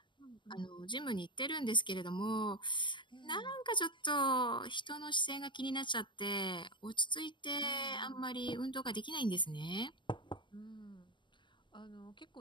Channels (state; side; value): late; right; 0.23 ms